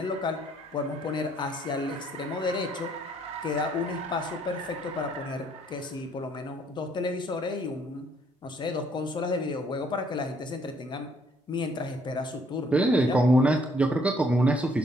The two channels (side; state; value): both; normal; correlation 0.65